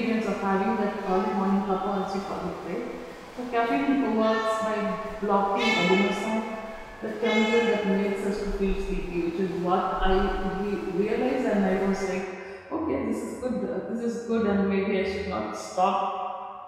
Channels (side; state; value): both; identical; correlation 1.00